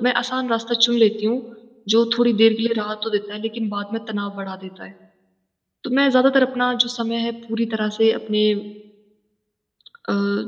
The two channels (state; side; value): identical; both; correlation 1.00